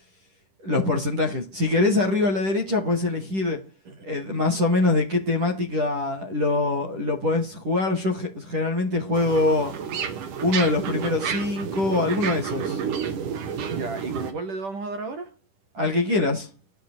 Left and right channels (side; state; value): left; late; 10 ms